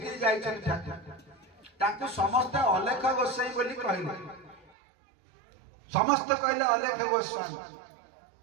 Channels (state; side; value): drops out; left; at 4.7 s